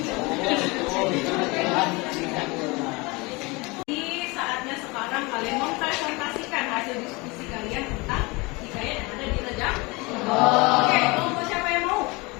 Saatnya sekarang kalian mempresentasikan hasil diskusi kalian tentang hikayat yang ada di Rejang. Oke, kelompok siapa yang mau?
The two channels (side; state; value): right; quieter; 25.6 dB